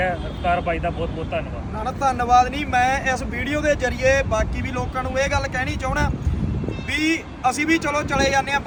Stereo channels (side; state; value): both; identical; correlation 1.00